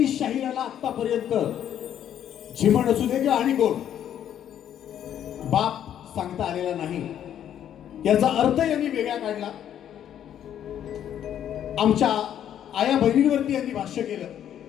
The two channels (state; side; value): quieter; right; 10.2 dB